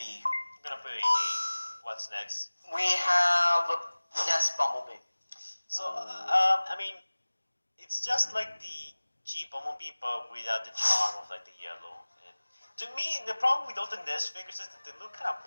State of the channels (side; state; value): both; inverted; correlation -1.00